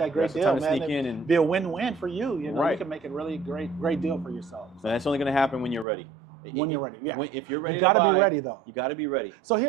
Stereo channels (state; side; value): drops out; left; at 5.9 s